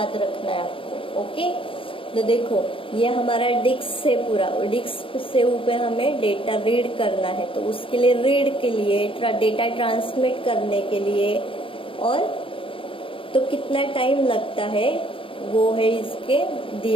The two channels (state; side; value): late; right; 0.26 ms